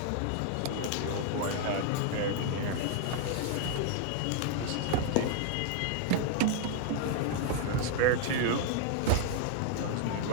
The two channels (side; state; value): both; different; correlation 0.00